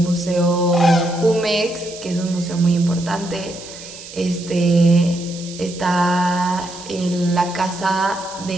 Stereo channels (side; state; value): right; noise; hiss, 15 dB below the sound